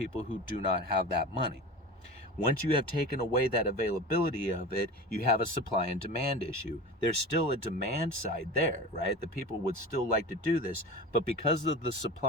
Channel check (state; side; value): normal; both; correlation 0.32